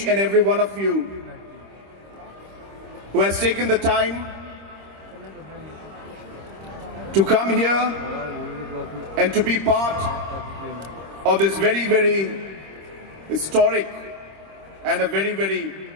and every one of you who has taken the time to come here and to be part of this very, very historic and a very, very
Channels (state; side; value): late; left; 26 ms